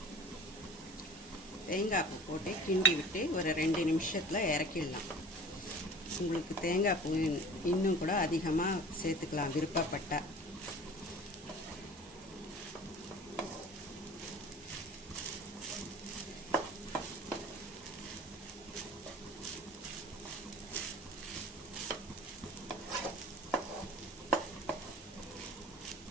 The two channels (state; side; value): normal; both; correlation 0.42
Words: தேங்காய் பூ போட்டு கிண்டி விட்டு ஒரு 2 நிமிஷத்தில் இறக்கிடலாம். உங்களுக்கு தேங்காய் பூ இன்னும் கூட அதிகமாக சேர்த்துக்கலாம் விருப்பப்பட்டால்.